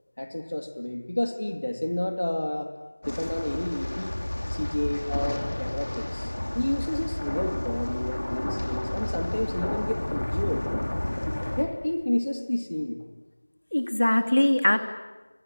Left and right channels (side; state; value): both; inverted; correlation -1.00